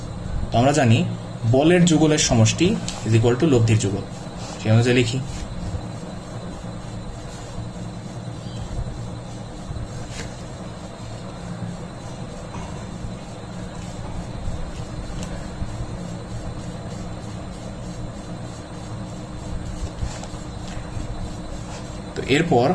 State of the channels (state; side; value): identical; both; correlation 1.00